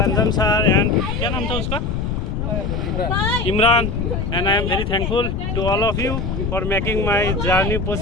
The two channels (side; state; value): left; noise; rumble, 2 dB below the sound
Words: Anjum sir and क्या नाम था उसका Imran and I am very thankful to all of you for making my journey